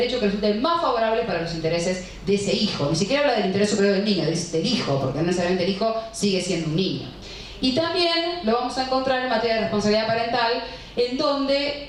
que resulte más favorable para los intereses de ese hijo. Ni siquiera habla del interés superior del niño, del hijo, porque no necesariamente el hijo sigue siendo un niño. Y también lo vamos a encontrar en materia de responsabilidad parental, en donde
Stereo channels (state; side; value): identical; both; correlation 1.00